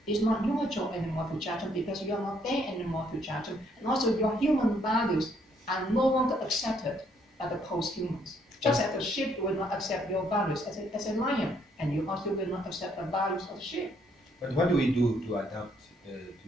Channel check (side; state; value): both; normal; correlation 0.69